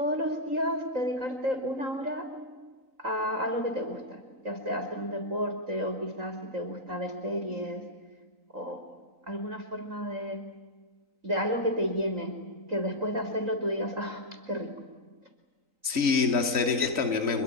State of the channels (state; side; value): late; left; 3.9 ms